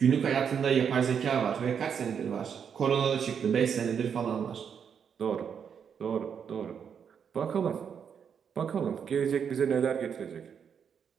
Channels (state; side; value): quieter; left; 7.3 dB